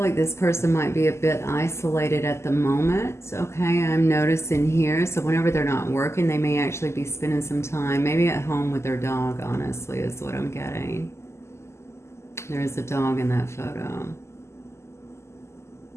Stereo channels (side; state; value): right; late; 0.13 ms